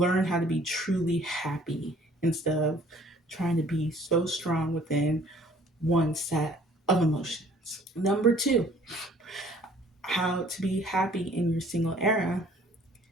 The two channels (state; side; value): normal; both; correlation 0.56